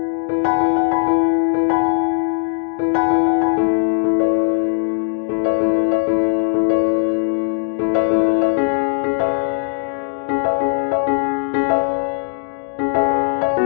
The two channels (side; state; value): right; silent; digital silence